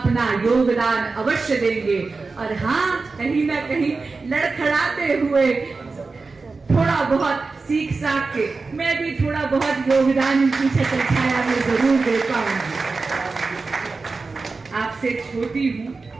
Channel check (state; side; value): quieter; left; 4.0 dB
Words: योगदान अवश्य देंगे। और हाँ, कहीं ना कहीं लड़खड़ाते हुए थोड़ा बहुत सीख साख के मैं भी थोड़ा बहुत योगदान इनकी छत्र छाया में जरूर दे पाऊंगी। आपसे छोटी हूं